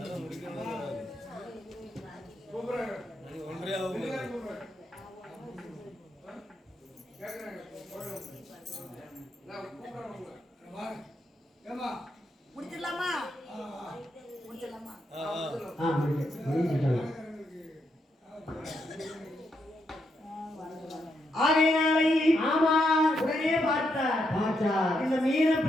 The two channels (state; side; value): normal; both; correlation 0.80